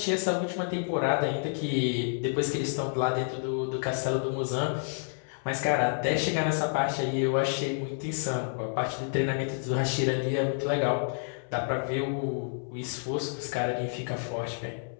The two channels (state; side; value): silent; right; 58 dB below the other